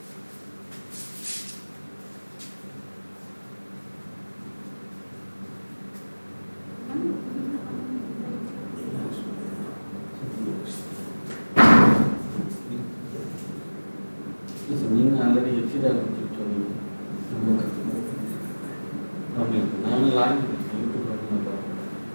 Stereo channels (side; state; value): both; inverted; correlation -1.00